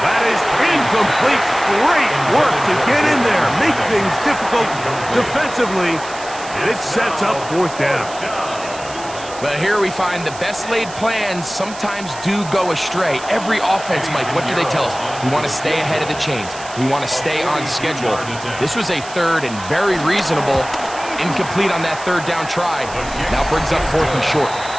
That is incomplete. Great work to get in there, make things difficult defensively, and it sets up fourth down. But here we find the best laid plans sometimes do go astray. Every offense, Mike, what do they tell us? We want to stay ahead of the chains. We want to stay on schedule. This was a third and very reasonable. Incomplete on that third down try. Now brings up fourth and short.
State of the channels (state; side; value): noise; right; hiss, 15 dB below the sound